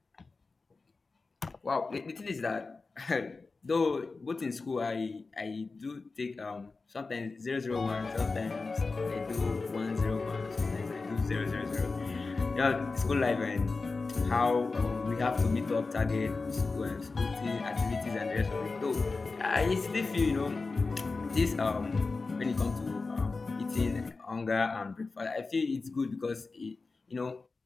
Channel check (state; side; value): quieter; right; 4.0 dB